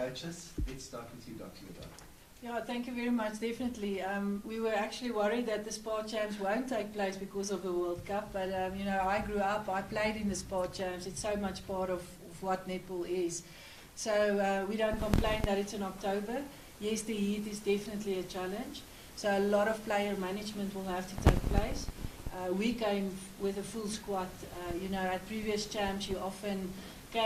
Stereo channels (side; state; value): both; identical; correlation 1.00